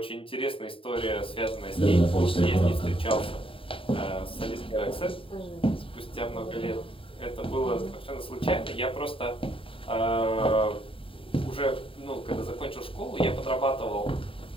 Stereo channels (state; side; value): late; right; 0.26 ms